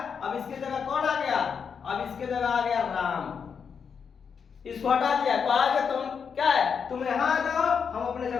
इसकी जगह कौन आ गया, अब इसकी जगह आ गया राम, इसको हटा दिया। कहा कि तुम क्या है, तुम यहाँ आ जाओ, हम अपने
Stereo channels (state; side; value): quieter; right; 6.5 dB